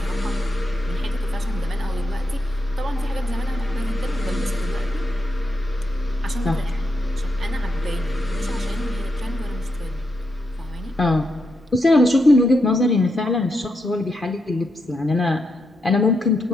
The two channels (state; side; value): normal; both; correlation 0.83